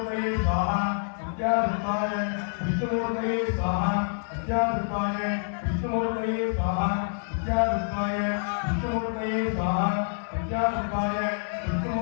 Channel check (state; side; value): silent; right; digital silence